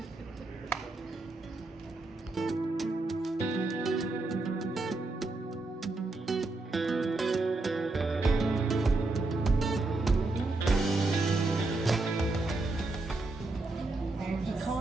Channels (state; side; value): quieter; left; 3.2 dB